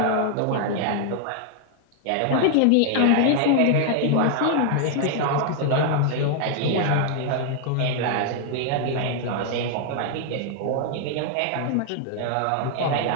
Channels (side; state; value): both; different; correlation 0.00